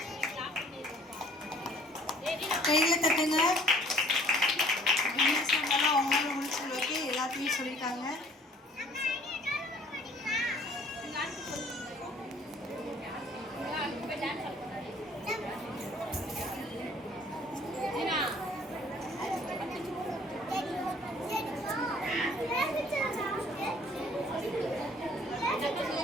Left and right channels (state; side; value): normal; both; correlation 0.56